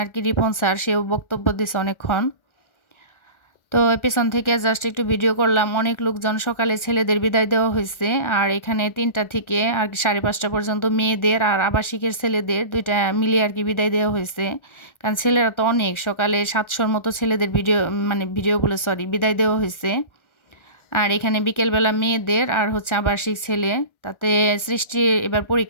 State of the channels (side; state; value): right; late; 1.3 ms